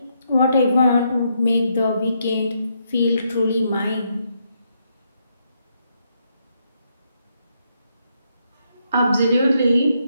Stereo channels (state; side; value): inverted; both; correlation -0.77